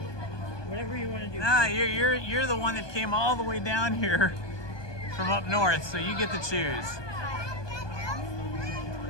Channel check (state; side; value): late; right; 1.2 ms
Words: Whatever you want to do. Nah, you're the one that came all the way down here from up north, so you get to choose.